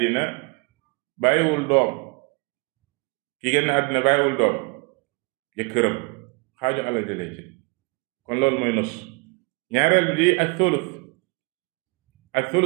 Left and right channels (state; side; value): quieter; left; 31.0 dB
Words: bàyyiwul doom ki génn àddina bàyyiwul doom jëkkëram xaaju alal ji lay jël kon loolu mooy nus ñaareel bi di ak